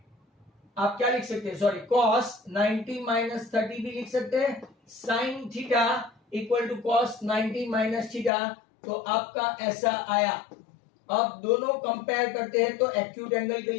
आप क्या लिख सकते हैं? सॉरी, cos 90 माइनस 30 भी लिख सकते हैं। sin theta equal to cos 90 minus theta, तो आपका ऐसा आया। अब दोनों कंपेयर करते हैं तो एक्यूट एंगल के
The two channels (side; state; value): right; drops out; at 8.3 s